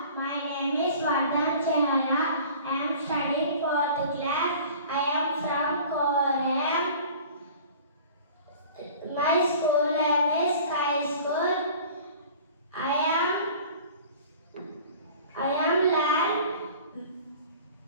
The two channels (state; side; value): inverted; both; correlation -0.44